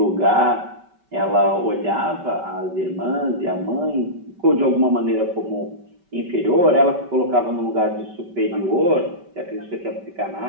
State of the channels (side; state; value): left; late; 5.2 ms